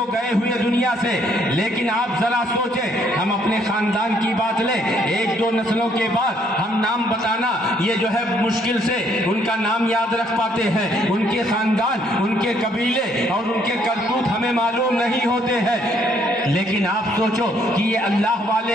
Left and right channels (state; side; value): normal; both; correlation 0.67